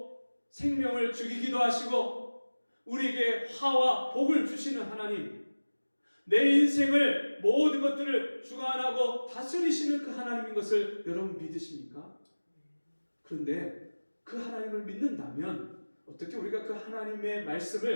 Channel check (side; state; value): both; inverted; correlation -1.00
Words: 생명을 죽이기도 하시고 우리에게 화와 복을 주시는 하나님, 내 인생을 모든 것들을 주관하고 다스리시는 그 하나님인 것을 여러분 믿으십니까? 그런데 그 하나님을 믿는다면 어떻게 우리가 그 하나님의